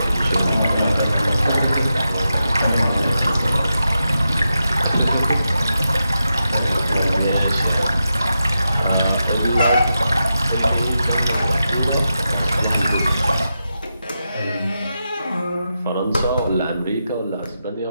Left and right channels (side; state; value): both; inverted; correlation -0.88